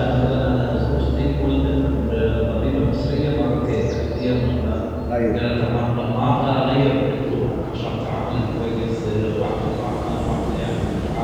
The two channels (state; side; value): identical; both; correlation 1.00